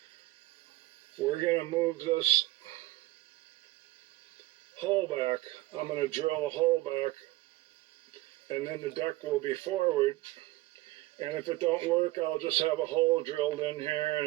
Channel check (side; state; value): left; quieter; 19.2 dB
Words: we're going to move this hole back. I'm going to drill a hole back, and then the deck will be forward. And if it don't work, I'll just have a hole drilled in here, and